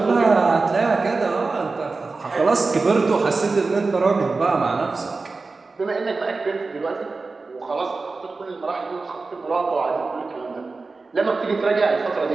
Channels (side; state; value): left; quieter; 3.9 dB